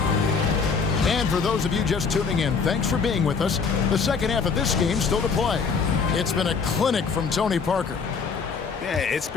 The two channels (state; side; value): quieter; right; 5.4 dB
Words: And for those of you just tuning in, thanks for being with us. The second half of this game still to play. It's been a clinic from Tony Parker. Yeah, it's